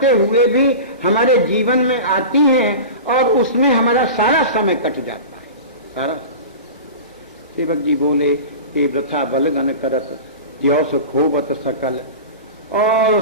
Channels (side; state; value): both; inverted; correlation -0.32